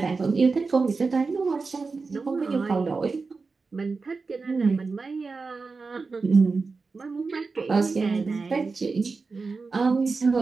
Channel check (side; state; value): left; quieter; 4.3 dB